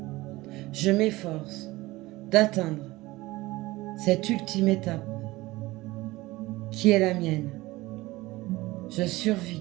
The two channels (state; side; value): quieter; left; 19.6 dB